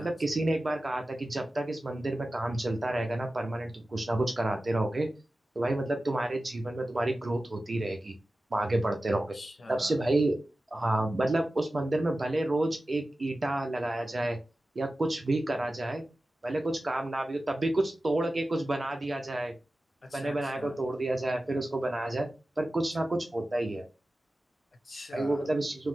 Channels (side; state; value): both; normal; correlation 0.95